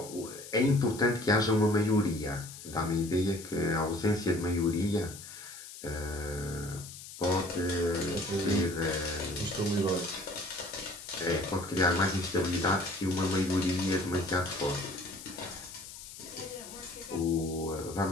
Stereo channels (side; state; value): left; noise; hiss, 14 dB below the sound